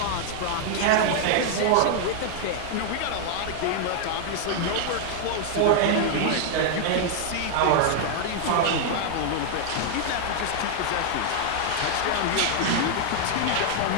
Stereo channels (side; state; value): both; different; correlation 0.00